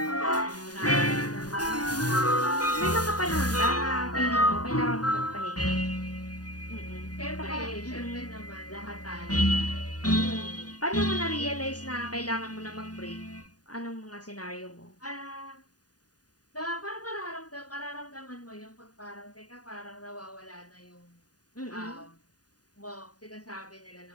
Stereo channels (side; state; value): right; late; 0.68 ms